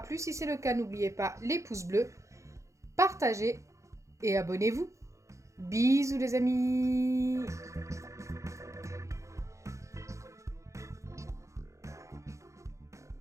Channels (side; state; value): left; late; 0.15 ms